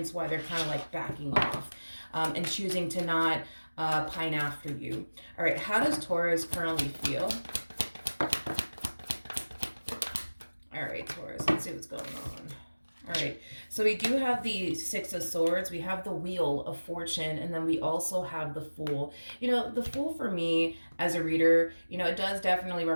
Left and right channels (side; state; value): both; inverted; correlation -1.00